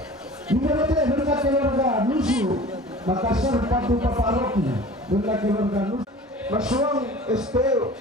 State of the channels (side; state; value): both; normal; correlation 0.41